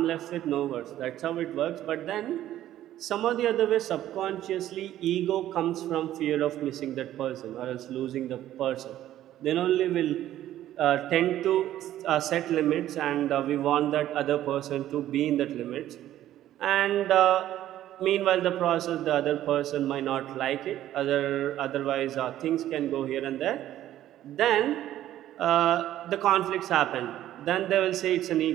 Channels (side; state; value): left; quieter; 12.9 dB